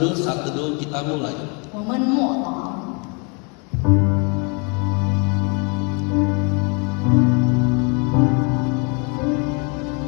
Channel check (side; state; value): right; quieter; 34.2 dB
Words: kita mulai. 我们默祷。